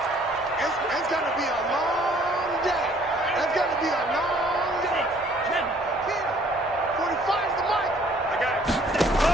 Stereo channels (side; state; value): both; normal; correlation 0.59